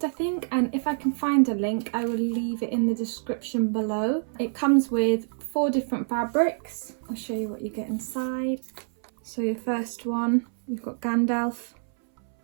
I think, and if I can find a link I will leave it in the description below. It comes with 4 different fabrics. I'll show you what you get inside. So your first one, you've got Gandalf.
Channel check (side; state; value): left; silent; 60 dB below the other